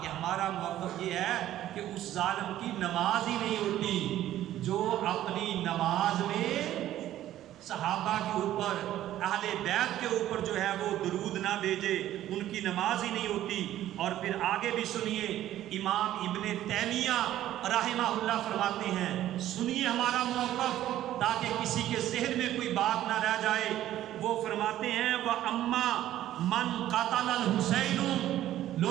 کہ ہمارا موقف یہ ہے کہ اس ظالم کی نماز ہی نہیں ہوتی جو اپنی نماز میں صحابہ کے اوپر، اہل بیت کے اوپر جو ہے وہ درود نہ بھیجے، ان کی نماز ہی نہیں ہوتی۔ اور پھر آگے بھی سنیے، امام ابن تیمیہ رحمہ اللہ فرماتے ہیں، سنیے ہمارا موقف تاکہ کسی کے ذہن میں کوئی بات نہ رہ جائے۔ وہ فرماتے ہیں وَأَمَّا مَنْ قَتَلَ الْحُسَيْنُ،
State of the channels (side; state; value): left; quieter; 13.0 dB